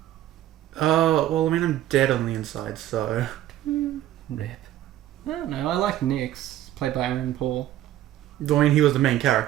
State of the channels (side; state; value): left; quieter; 13.3 dB